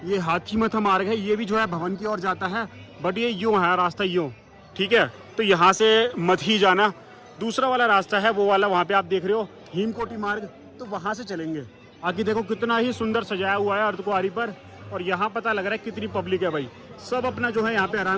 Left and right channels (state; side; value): identical; both; correlation 1.00